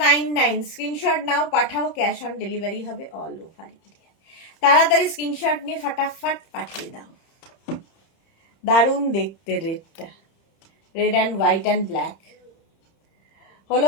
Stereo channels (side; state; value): right; late; 30 ms